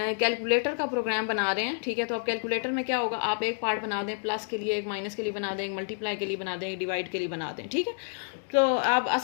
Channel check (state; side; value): silent; right; digital silence